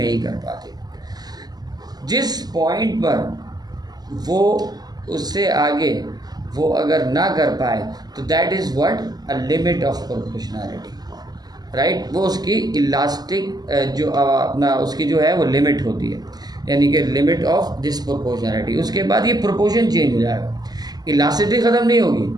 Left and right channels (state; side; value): late; left; 0.20 ms